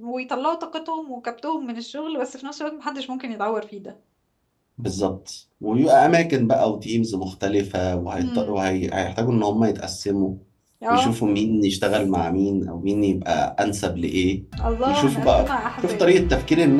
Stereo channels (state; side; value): identical; both; correlation 1.00